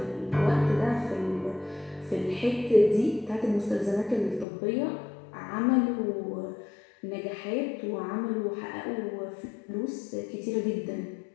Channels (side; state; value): right; drops out; at 4.5 s